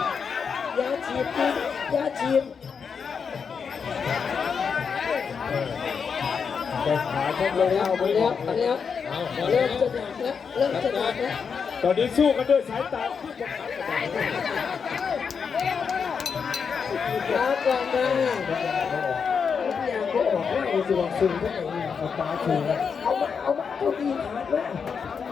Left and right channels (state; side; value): quieter; right; 6.2 dB